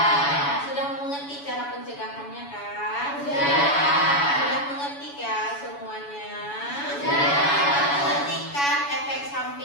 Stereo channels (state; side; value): late; right; 7.1 ms